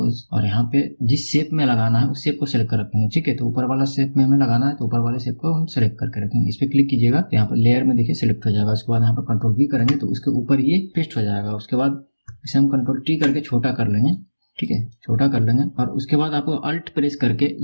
और यहाँ पे जिस शेप में लगाना है उस शेप को सिलेक्ट कर रखेंगे। ठीक है, तो ऊपर वाला शेप में हमें लगाना है तो ऊपर वाले शेप को हम सिलेक्ट करके रखेंगे। इस पे क्लिक कीजिएगा तो यहाँ पर लेयर में देखिए सिलेक्ट हो जाएगा। उसके बाद यहाँ पर Ctrl+V करेंगे तो उसके ऊपर ये पेस्ट हो जाएगा। उसके बाद इसे हम Ctrl+T करके छोटा कर लेंगे। ठीक है, छोटा कर लेंगे और उसके बाद आपको अल्ट प्रेस करके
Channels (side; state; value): both; inverted; correlation -1.00